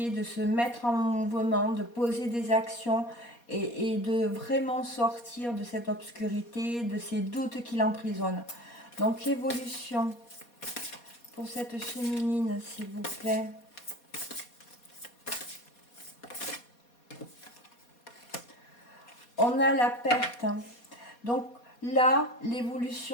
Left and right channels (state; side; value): late; right; 4.2 ms